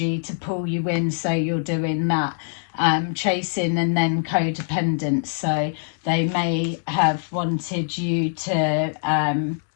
to pull you in. So you're doing that, chasing, and then codependence. So they may have wanted you to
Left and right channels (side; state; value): right; silent; 63 dB below the other